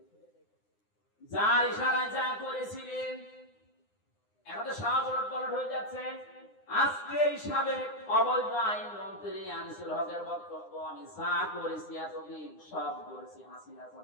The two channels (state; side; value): late; right; 9.8 ms